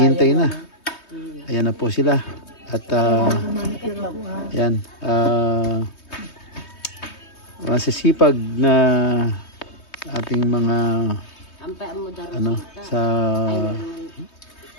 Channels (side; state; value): right; late; 3.2 ms